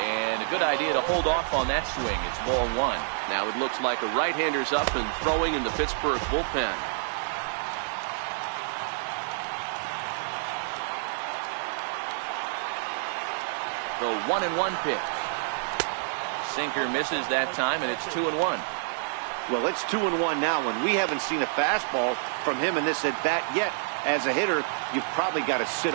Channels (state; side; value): silent; left; digital silence